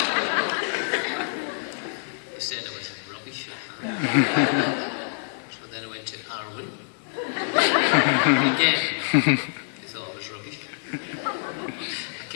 They said I was rubbish. So then I went to Arwen. Again, they thought I was rubbish. I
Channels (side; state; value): right; silent; digital silence